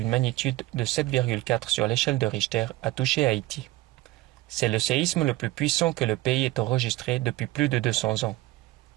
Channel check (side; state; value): left; quieter; 18.6 dB